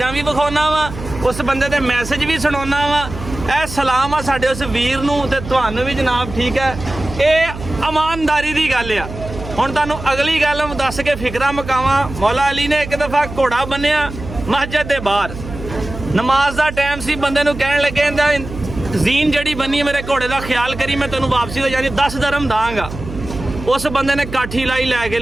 ਵੀ ਵਿਖਾਉਣਾ ਵਾ ਉਸ ਬੰਦੇ ਦੇ ਮੈਸੇਜ ਵੀ ਸੁਣਾਉਣਾ ਵਾ। ਇਹ ਸਲਾਮ ਆ ਸਾਡੇ ਉਸ ਵੀਰ ਨੂੰ ਤੇ ਤੁਹਾਨੂੰ ਵੀ ਜਨਾਬ ਠੀਕ ਹੈ। ਇਹ ਇਮਾਨਦਾਰੀ ਦੀ ਗੱਲ ਆ। ਹੁਣ ਤੁਹਾਨੂੰ ਅਗਲੀ ਗੱਲ ਦੱਸ ਕੇ ਫਿਕਰਾਂ ਮੁਕਾਵਾਂ। ਮੌਲਾ ਅਲੀ ਨੇ ਇੱਕ ਦਫਾ ਘੋੜਾ ਬੰਨਿਆ ਮਸਜਿਦ ਦੇ ਬਾਹਰ ਨਮਾਜ਼ ਦਾ ਟਾਈਮ ਸੀ ਬੰਦੇ ਨੂੰ ਕਹਿਣ ਲੱਗੇ ਜ਼ੀਨ ਜਿਹੜੀ ਬੰਨੀ ਮੇਰੇ ਘੋੜੇ ਦਾ ਖਿਆਲ ਕਰੀ ਮੈਂ ਤੈਨੂੰ ਵਾਪਸੀ ਹੋ ਜਾਣੀ 10 ਦਰਮ ਦਾਂਗਾ। ਉਸ ਬੰਦੇ ਨੇ ਕਾਠੀ ਲਾਈ ਲੈ ਕੇ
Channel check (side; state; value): right; noise; hum, 11 dB below the sound